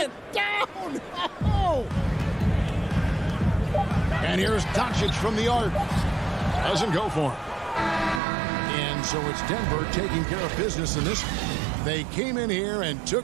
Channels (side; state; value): left; drops out; at 8.2 s